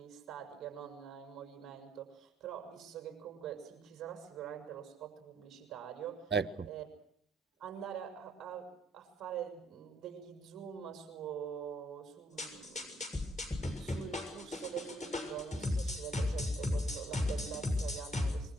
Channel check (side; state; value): both; normal; correlation 0.70